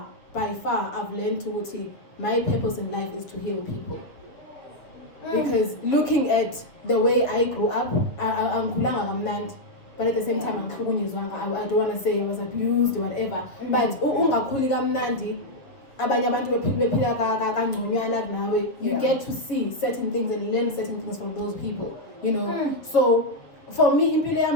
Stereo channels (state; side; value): late; right; 7.0 ms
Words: I've learned to my purpose in life is to heal people. Because looking at the way I grew up, I'm kulanga, but at the same time I don't want to say I was abused or whatever. But ungakhuli kamnandi, abanye abantu bephila kangconywana nawe, you get to see certain things and learn certain things from those people, you know. So for me,